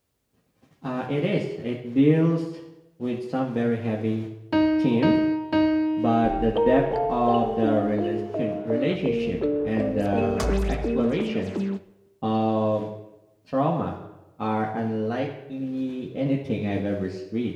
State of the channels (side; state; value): both; identical; correlation 1.00